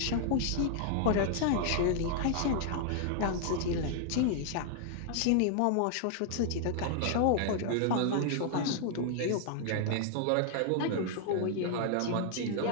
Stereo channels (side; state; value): both; different; correlation 0.00